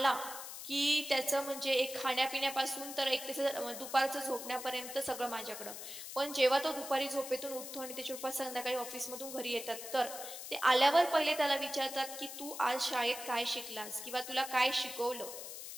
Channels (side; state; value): left; noise; hiss, 9 dB below the sound